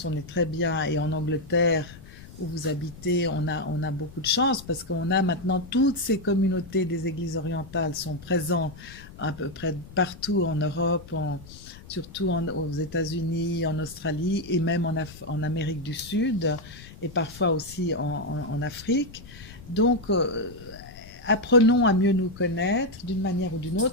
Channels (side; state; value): left; noise; rumble, 18 dB below the sound